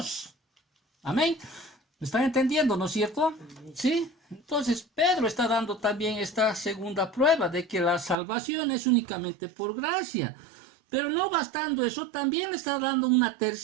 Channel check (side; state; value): left; drops out; at 8.2 s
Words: Amén. ¿Me están entendiendo, no es cierto? Sí. Entonces, Pedro está dando también esta segunda prueba de que la salvación es únicamente por gracia. Pero no bastando eso, también le está dando una